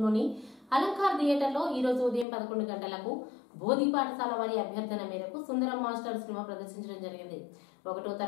అలంకార్ థియేటర్లో ఈ రోజు ఉదయం 11 గంటలకు బోధి పాఠశాల వారి అభ్యర్థన మేరకు సుందరం మాస్టర్ సినిమా ప్రదర్శించడం జరిగింది. 1వ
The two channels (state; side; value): drops out; right; at 2.2 s